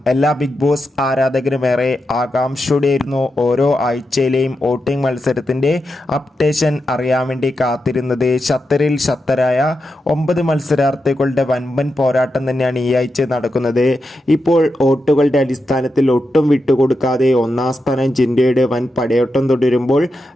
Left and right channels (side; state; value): both; normal; correlation 0.88